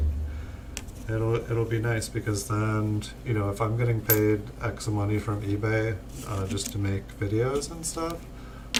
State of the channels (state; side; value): identical; both; correlation 1.00